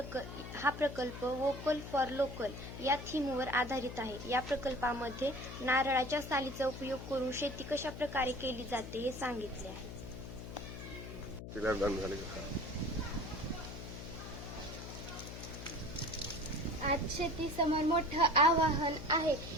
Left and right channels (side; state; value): left; noise; hum, 10 dB below the sound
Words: प्रकल्प वोकल फॉर लोकल या थीमवर आधारित आहे। या प्रकल्पामध्ये नारळाच्या सालीचा उपयोग करून शेती कशा प्रकारे केली जाते हे सांगितले आहे। आज शेतीसमोर मोठं आव्हान आहे।